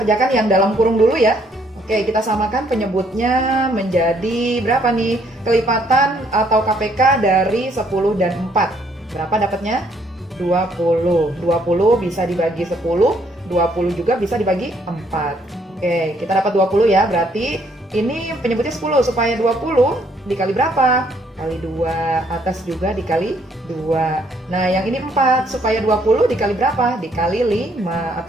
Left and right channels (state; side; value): normal; both; correlation 0.67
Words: yang dalam kurung dulu ya. Oke, kita samakan penyebutnya menjadi berapa nih? Kelipatan atau KPK dari 10 dan 4. Berapa dapatnya? 20. 20 bisa dibagi 10, 20 juga bisa dibagi 4. Oke, kita dapat 20 ya, berarti ini penyebutnya 10, supaya 20 dikali berapa? Kali 2, atas juga dikali 2. Nah, yang ini 4, supaya 20 dikali berapa? Dikali 5,